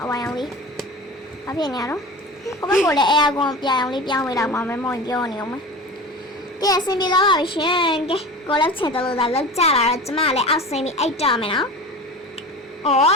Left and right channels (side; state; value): both; normal; correlation 0.33